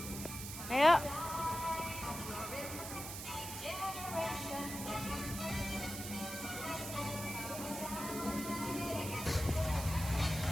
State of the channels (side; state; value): right; noise; hiss, 7 dB below the sound